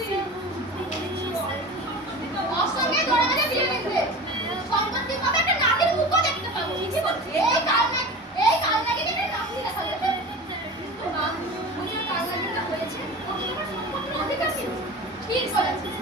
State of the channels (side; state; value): both; normal; correlation 0.33